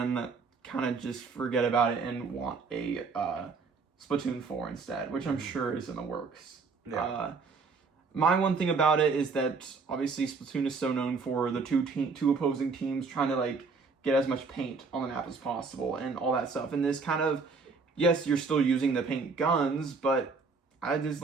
kind of just forget about it and want a Splatoon 4 instead, which I'm sure is in the works. Yeah. My one thing about it is that obviously Splatoon is so known for the two opposing teams trying to like get as much paint on the map as possible and all that stuff. And this kind of, yes, you're still using the paint guns, but there's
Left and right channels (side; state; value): left; quieter; 4.6 dB